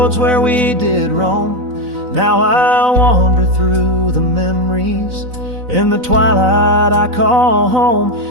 where we did roam. Now I wander through the memories in the twilight I call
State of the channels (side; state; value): left; late; 4.0 ms